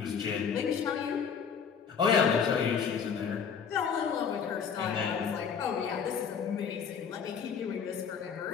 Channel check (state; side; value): quieter; right; 6.8 dB